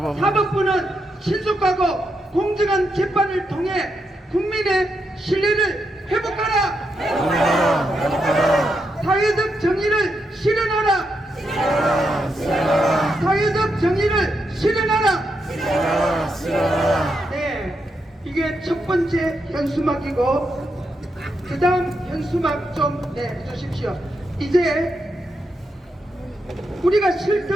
사법부는 신속하고 공정한 재판을 통해 국민의 신뢰를 회복하라. 사회적 정의를 실현하라. 사회적 정의를 실현하라. 네, 이게 첫 번째 현수막이고, 그 다음 현수막 좀 내주십시오. 이제 우리가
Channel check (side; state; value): both; normal; correlation 0.83